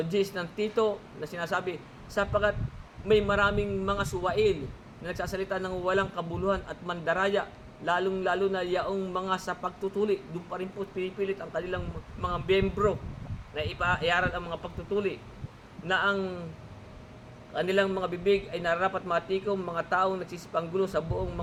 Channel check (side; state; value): both; identical; correlation 1.00